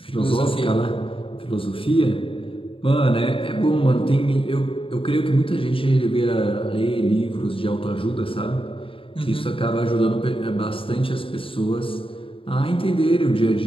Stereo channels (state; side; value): late; right; 0.26 ms